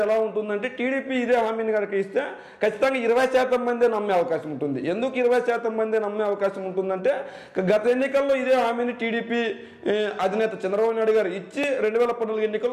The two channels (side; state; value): both; identical; correlation 1.00